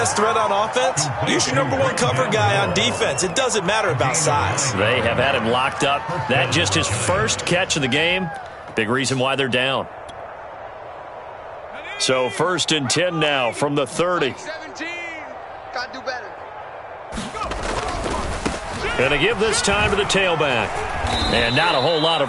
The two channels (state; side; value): identical; both; correlation 1.00